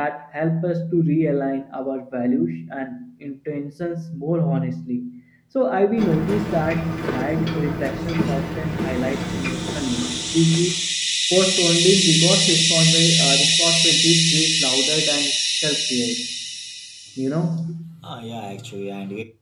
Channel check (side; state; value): both; identical; correlation 1.00